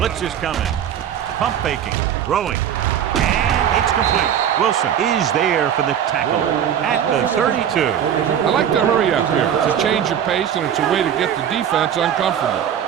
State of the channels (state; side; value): quieter; left; 9.3 dB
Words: is coming. Pump faking. Throwing. And it's complete. Wilson is there for the tackle at the 32. I like to hurry up here. It's a change of pace, and it's a way to get the defense uncomfortable.